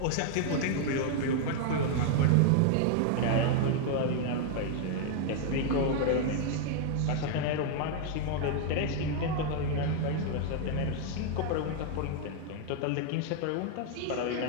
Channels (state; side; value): different; both; correlation 0.00